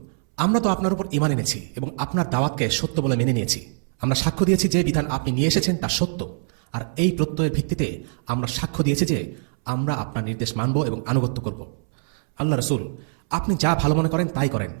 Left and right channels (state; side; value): silent; left; 63 dB below the other